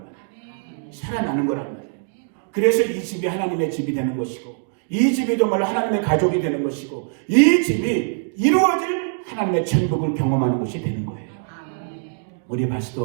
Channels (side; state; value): left; silent; digital silence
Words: 말이에요. 살아나는 거란 말이에요. 그래서 이 집이 하나님의 집이 되는 것이고, 이 집이 정말로 하나님의 가족이 되는 것이고, 이 집이 이루어질 하나님의 천국을 경험하는 것이 되는 거예요. 우리